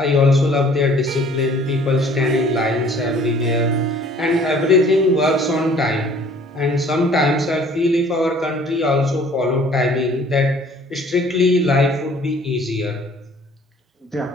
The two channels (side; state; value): both; normal; correlation 0.54